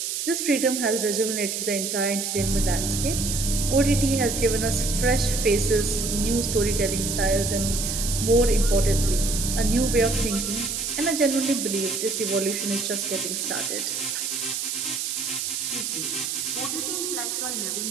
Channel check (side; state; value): right; noise; hiss, 2 dB below the sound